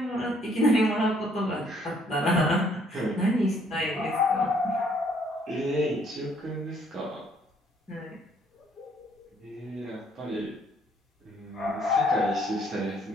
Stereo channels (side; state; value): both; normal; correlation 0.64